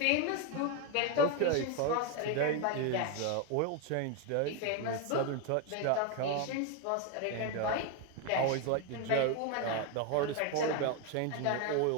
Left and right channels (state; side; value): different; both; correlation 0.01